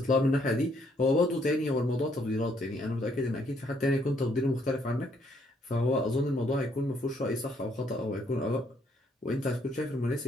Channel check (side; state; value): both; normal; correlation 0.69